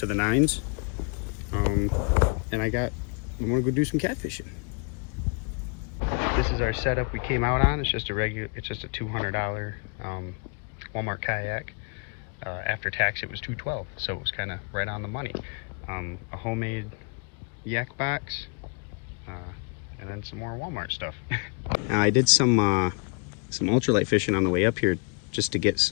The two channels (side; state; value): right; quieter; 37.0 dB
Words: the nines, and I'm gonna go do some catfishing. This is our setup we came out on. It's just a $200 Walmart kayak. After tax, it was $212, so it was kind of right on the money. A homemade yak box, and then some more Walmart stuff. Now, I did some ultralight fishing on the way up here just to get